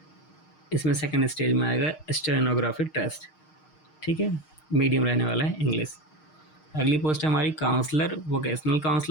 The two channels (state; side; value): late; right; 6.5 ms